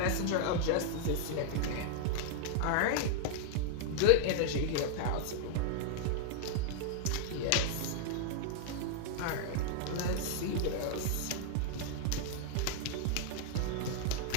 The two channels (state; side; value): different; both; correlation 0.00